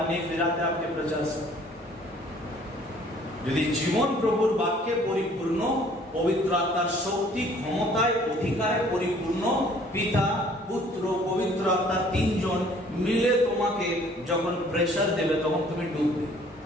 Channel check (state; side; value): normal; both; correlation 0.56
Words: नहीं फिराते आपके प्रचार से। যদি জীবন প্রভুর বাক্যে পরিপূর্ণ, পবিত্র আত্মার শক্তি, ক্ষমতায়, অধিকারে পরিপূর্ণ, পিতা, পুত্র, পবিত্র আত্মা তিনজন মিলে তোমাকে যখন প্রেশার देवे, তখন তুমি डूबবে।